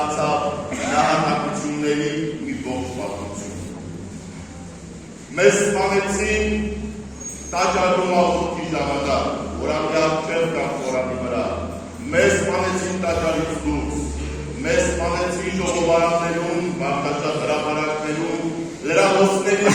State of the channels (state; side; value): identical; both; correlation 1.00